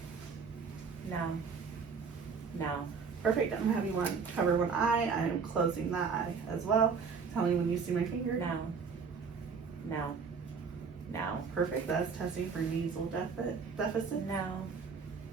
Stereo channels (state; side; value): quieter; left; 5.5 dB